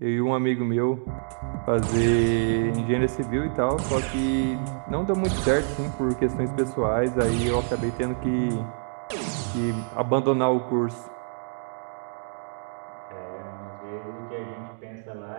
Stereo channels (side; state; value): left; silent; digital silence